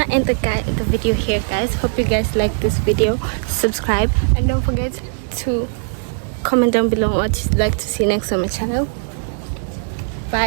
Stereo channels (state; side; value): silent; left; 58 dB below the other